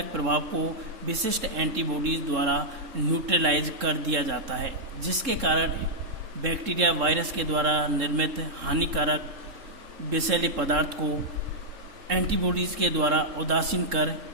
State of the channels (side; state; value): left; late; 3.7 ms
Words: प्रभाव को विशिष्ट एंटीबॉडीज द्वारा न्यूट्रलाइज कर दिया जाता है, जिसके कारण बैक्टीरिया वायरस के द्वारा निर्मित हानिकारक विषैले पदार्थ को एंटीबॉडीज के द्वारा उदासीन कर